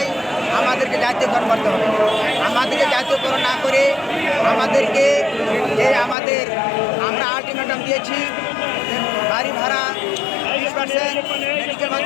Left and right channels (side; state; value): right; drops out; at 6.2 s